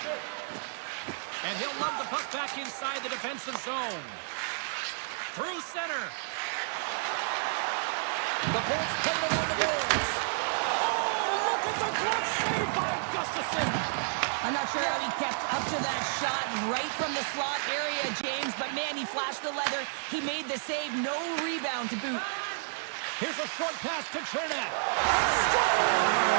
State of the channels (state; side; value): silent; left; digital silence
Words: And he'll lob the puck back inside the defensive zone. Through center. The Bolts play it along the boards. Oh, look at the glove save by Gustafsson. I'm not sure how he kept up to that shot right from the slot area, James, but man, he flashed the leather. He made the save, no rebound to boot. Here's a short pass to Chernak.